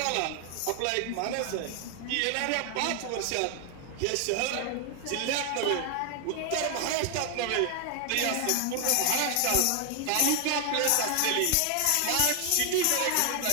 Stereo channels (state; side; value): different; both; correlation 0.00